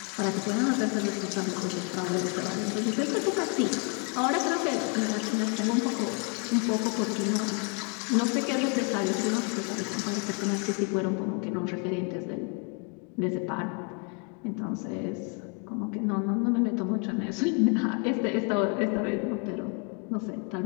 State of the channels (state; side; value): quieter; right; 37.0 dB